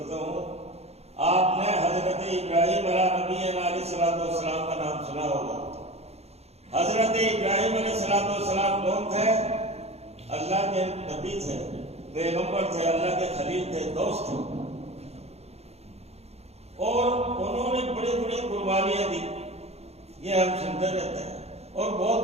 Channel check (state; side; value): late; left; 0.30 ms